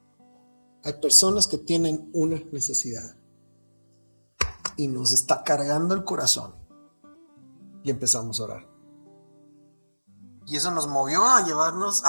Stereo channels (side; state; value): both; inverted; correlation -1.00